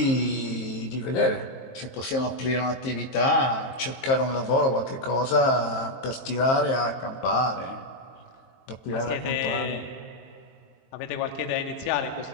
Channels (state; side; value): late; right; 23 ms